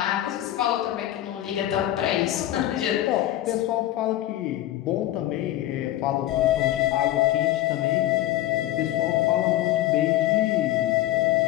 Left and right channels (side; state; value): right; quieter; 14.2 dB